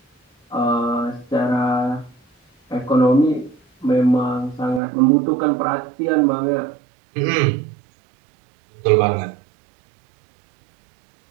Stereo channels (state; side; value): drops out; left; at 4.8 s